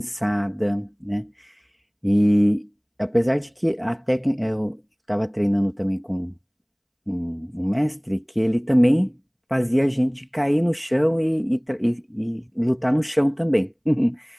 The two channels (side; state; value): both; identical; correlation 1.00